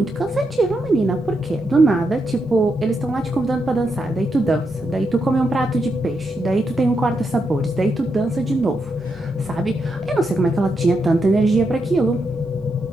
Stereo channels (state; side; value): normal; both; correlation 0.83